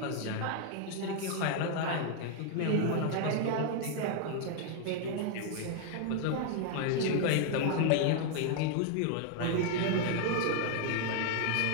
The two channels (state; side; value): different; both; correlation 0.00